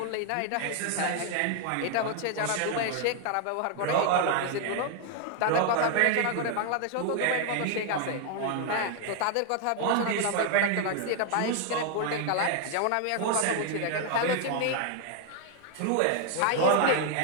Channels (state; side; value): different; both; correlation 0.00